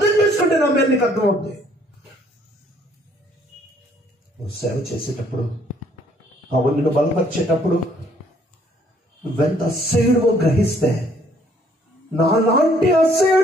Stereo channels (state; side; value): normal; both; correlation 0.63